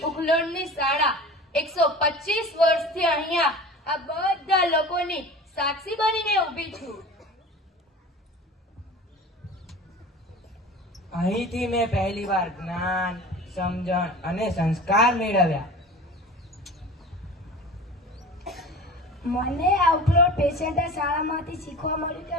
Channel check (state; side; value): normal; both; correlation 0.37